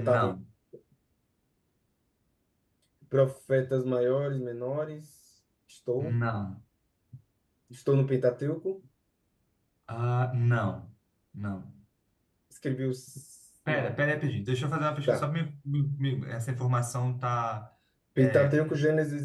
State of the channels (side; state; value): both; identical; correlation 1.00